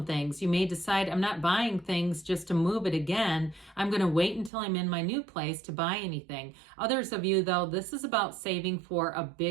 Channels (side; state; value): left; drops out; at 4.5 s